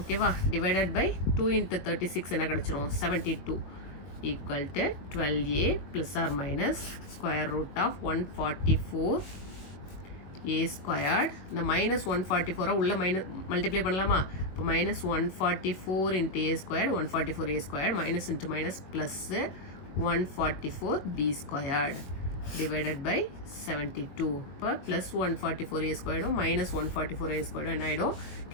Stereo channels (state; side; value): late; right; 21 ms